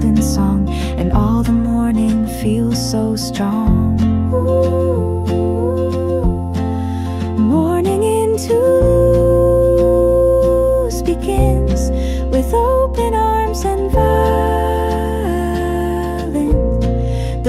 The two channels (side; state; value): both; identical; correlation 1.00